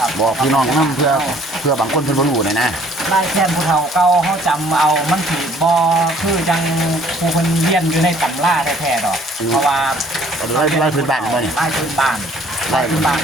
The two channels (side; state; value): both; normal; correlation 0.58